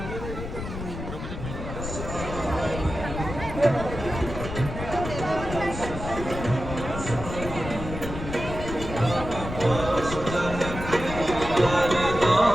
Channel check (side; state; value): left; noise; rumble, 7 dB below the sound